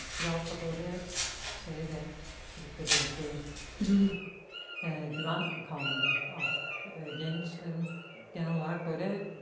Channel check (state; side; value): identical; both; correlation 1.00